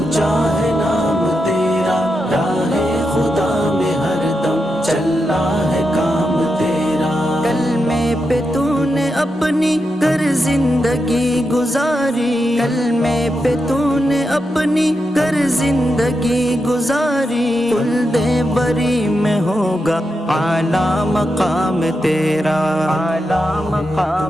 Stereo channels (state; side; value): normal; both; correlation 0.87